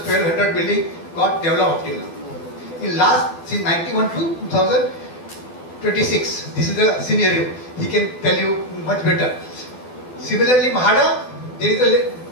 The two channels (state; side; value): late; right; 12 ms